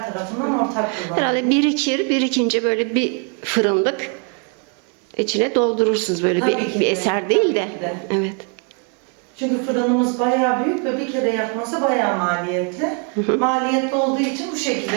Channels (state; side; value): quieter; left; 39.1 dB